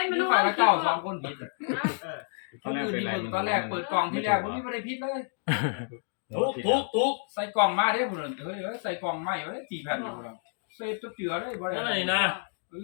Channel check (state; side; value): silent; right; digital silence